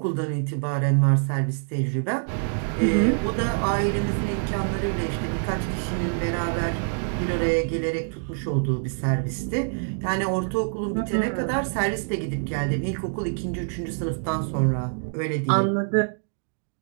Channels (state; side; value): silent; left; digital silence